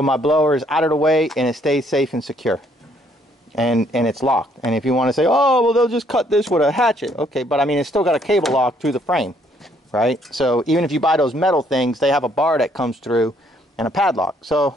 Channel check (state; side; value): normal; both; correlation 0.67